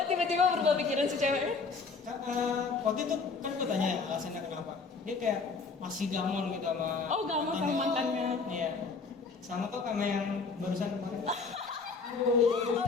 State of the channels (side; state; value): right; quieter; 4.6 dB